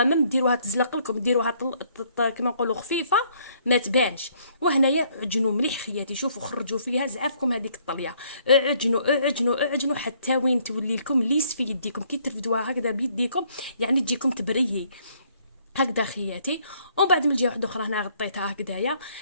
ما ديروها تزلق لكم، ديروها كما نقولوا خفيفه ما تبانش. وهنايا عجنوا مليح خياتي، شوفوا خرجوا فيها زعافكم هذيك الطليه، اعجنوا حتى وين تولي لكم ليس في يديكم، كي ترفدوها هكذا بيديكم يعني تجيكم تبريي هكذا خياتي. ومن بعد من الجهه واحده اخرى هنا غطيتها هكذايا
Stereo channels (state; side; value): inverted; both; correlation -0.65